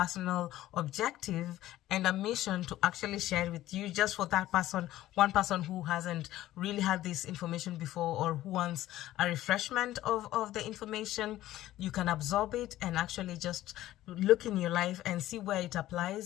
objective and a mission to actually share it with you, just for that person, one person who hasn't really had this information before or who wants a refreshment of the information. You can absorb it and actually just look in your life and see where it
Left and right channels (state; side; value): quieter; right; 14.7 dB